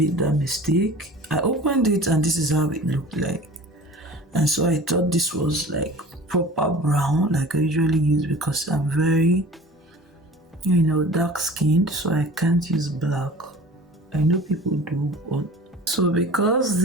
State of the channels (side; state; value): both; normal; correlation 0.42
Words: that mistake. I opened it and this is how it looked like, and so I thought this was like proper brown like I usually use because I'm very, dark skinned, so I can't use black. I know people do, but so because